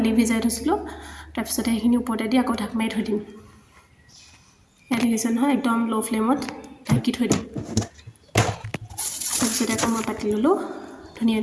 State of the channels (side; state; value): both; identical; correlation 1.00